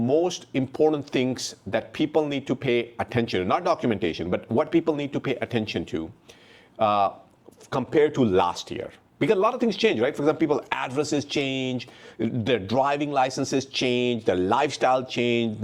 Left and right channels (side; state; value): both; identical; correlation 1.00